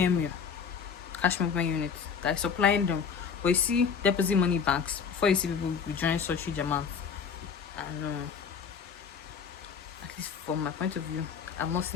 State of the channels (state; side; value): quieter; right; 6.5 dB